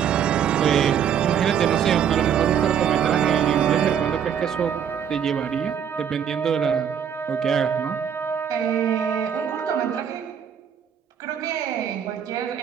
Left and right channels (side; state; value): left; quieter; 8.3 dB